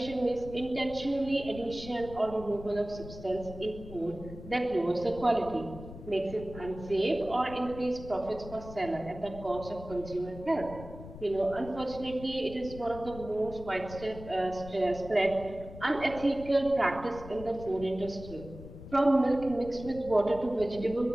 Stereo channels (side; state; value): left; noise; rumble, 13 dB below the sound